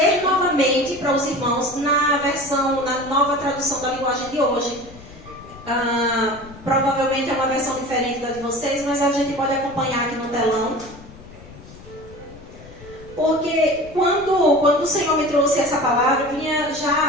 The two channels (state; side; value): noise; left; rumble, 19 dB below the sound